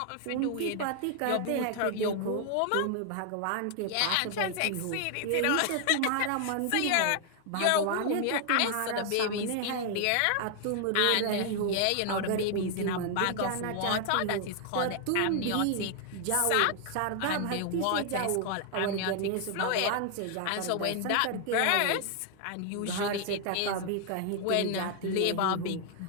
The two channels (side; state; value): both; different; correlation 0.00